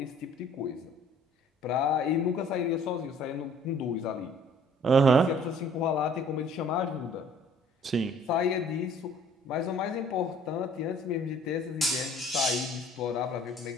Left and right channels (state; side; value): normal; both; correlation 0.55